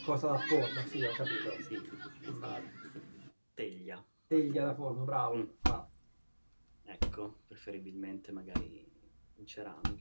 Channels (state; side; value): inverted; both; correlation -1.00